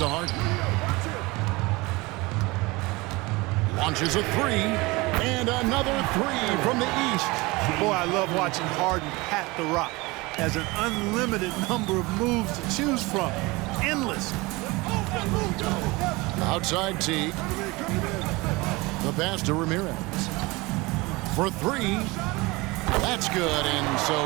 Harden. Launches a 3. And another 3 from the East. Boy, I love watching Harden pat the rock. Has an unlimited number of moves to choose from. Endless. Outside T. The pass to Ramirez. For 3. That's good. And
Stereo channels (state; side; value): quieter; left; 23.3 dB